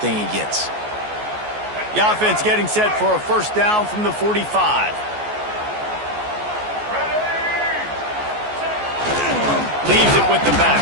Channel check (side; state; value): left; late; 14 ms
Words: he gets. The offense getting set for a first down from the 45. Leaves it with the